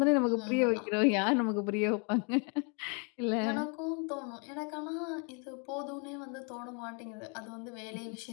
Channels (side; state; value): right; quieter; 37.1 dB